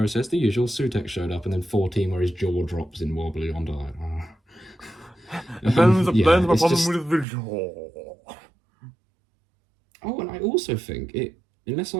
says, "The usual." Sutek showed up, and then 14 where his jaw drops in wobbly on diet. There's a problem with the jaw. Oh, and I also think unless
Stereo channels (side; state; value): left; drops out; at 7.2 s